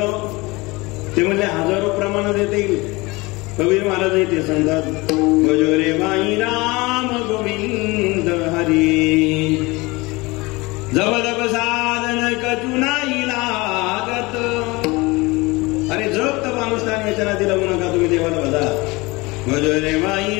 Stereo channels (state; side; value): quieter; right; 23.4 dB